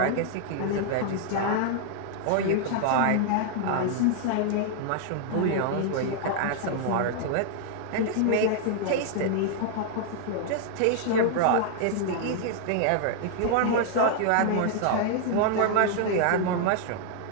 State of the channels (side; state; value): both; different; correlation 0.00